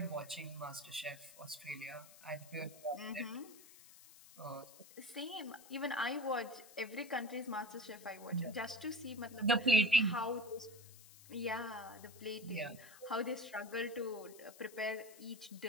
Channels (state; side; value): noise; left; hiss, 19 dB below the sound